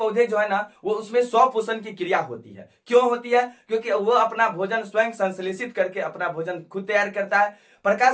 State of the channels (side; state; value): both; identical; correlation 1.00